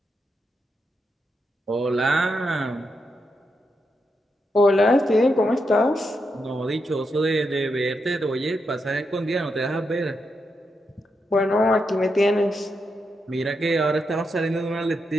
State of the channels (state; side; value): normal; both; correlation 0.84